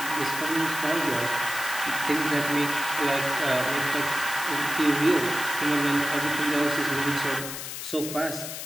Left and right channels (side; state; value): left; noise; hiss, 7 dB below the sound